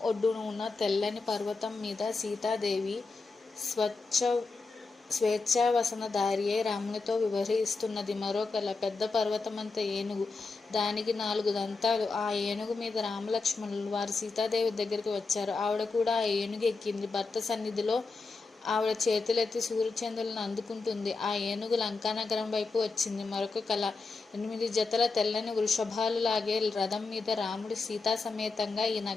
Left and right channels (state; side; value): quieter; right; 4.0 dB